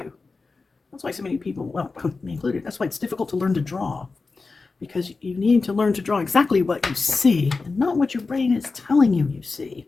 That's why so many people, well, me included, that's why it's difficult to learn to draw. Because you need to learn to draw exactly what you see and not what your brain is telling you you see.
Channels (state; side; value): quieter; right; 4.1 dB